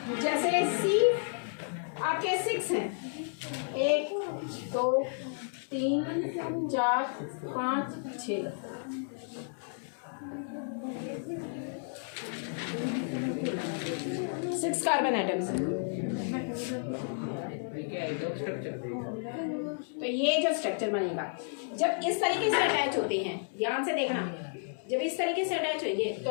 जैसे सी आपके 6 हैं, 1 2 3 4 5 6, 6 कार्बन आइटम्स। तो ये जो स्ट्रक्चर बनेगा, जब इस तरीके से अटैच होते हैं, ध्यान से देखना, जब इस तरीके से अटैच होंगे तो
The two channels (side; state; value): right; silent; digital silence